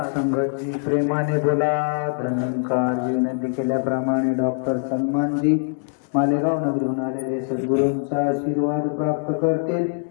संगतजी प्रेमाने बोला. धनंकार विनंती केल्याप्रमाणे डॉक्टर सलमानजी मालेगाव नगरीहून आलेले सद्गुरूंचा आशीर्वाद प्राप्त करतील.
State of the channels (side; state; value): right; silent; digital silence